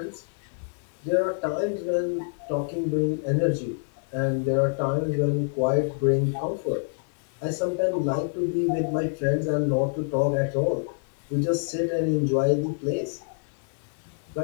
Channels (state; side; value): silent; right; digital silence